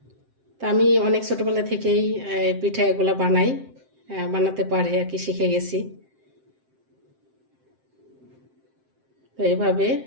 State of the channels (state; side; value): late; left; 7.7 ms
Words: তা আমি অনেক ছোটবেলা থেকেই পিঠা এগুলো বানাতে পারি আর কি, শিখে গেছি। তো এভাবে